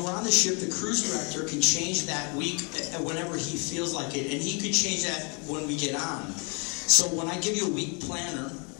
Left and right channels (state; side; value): quieter; right; 34.0 dB